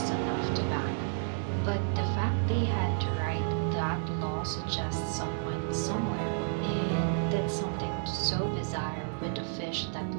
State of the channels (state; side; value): silent; left; digital silence